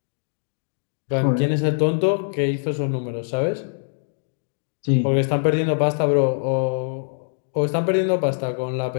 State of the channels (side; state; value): right; silent; digital silence